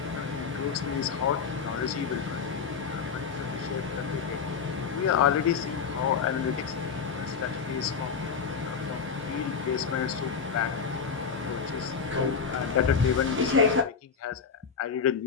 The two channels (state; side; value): quieter; right; 6.1 dB